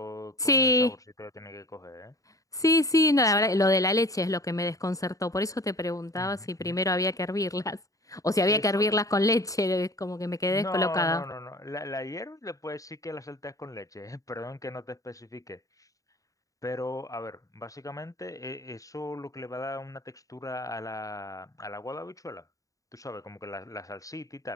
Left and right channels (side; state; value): right; late; 0.16 ms